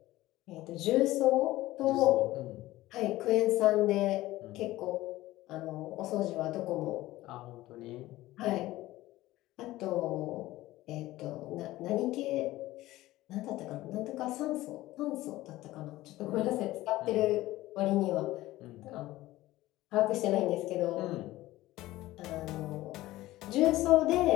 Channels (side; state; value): right; quieter; 17.0 dB